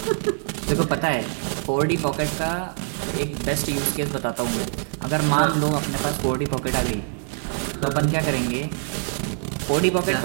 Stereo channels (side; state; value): left; silent; 59 dB below the other